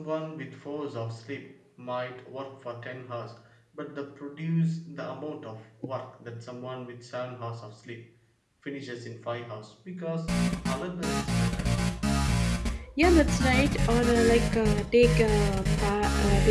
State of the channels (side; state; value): both; identical; correlation 1.00